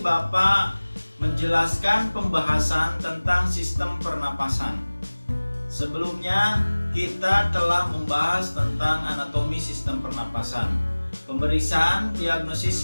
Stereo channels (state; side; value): inverted; both; correlation -1.00